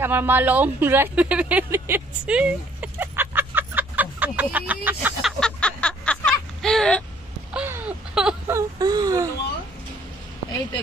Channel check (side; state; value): both; normal; correlation 0.61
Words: আমার মা লং ড্রাইভে বেরিয়েছে। এই তো